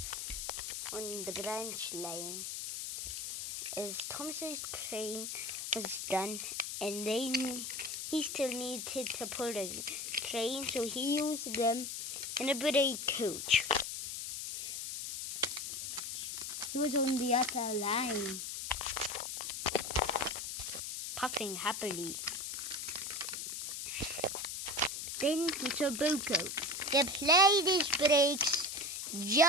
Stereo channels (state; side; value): noise; left; hiss, 5 dB below the sound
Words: on the branch line. As Thomas's train was done, and he still needed to pull the train, so he used them in a brake coach. He was on the other line, puffing happily. Then he saw Bunko. The plane breaks